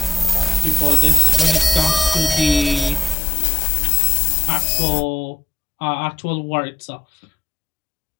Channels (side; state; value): right; drops out; at 3.2 s